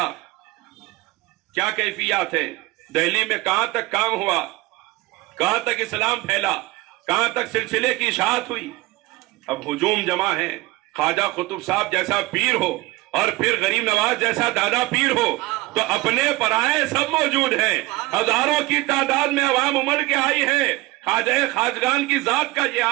کیا کیفیات ہیں، دہلی میں کہاں تک کام ہوا، کہاں تک اسلام پھیلا، کہاں تک سلسلے کی اشاعت ہوئی۔ اب ہجوم جمع ہے، خواجہ قطب صاحب جیسا پیر ہو اور پھر غریب نواز جیسا دادا پیر ہو تو اپنے پرائے سب موجود ہیں، ہزاروں کی تعداد میں عوام امڑ کے آئی ہے۔ خواجہ خواجگان کی ذات کا یہ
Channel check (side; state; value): left; quieter; 20.6 dB